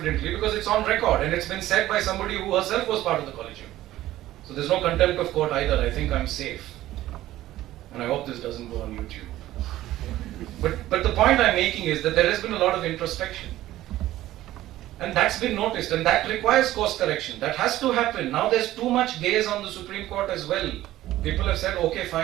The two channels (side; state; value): left; quieter; 14.9 dB